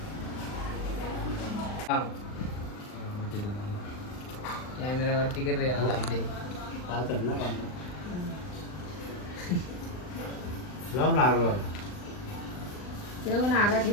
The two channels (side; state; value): right; late; 39 ms